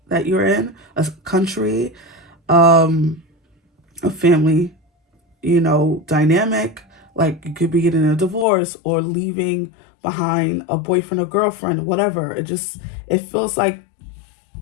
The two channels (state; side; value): drops out; right; at 8.5 s